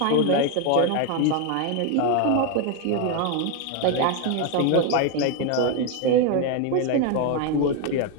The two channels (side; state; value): both; different; correlation 0.01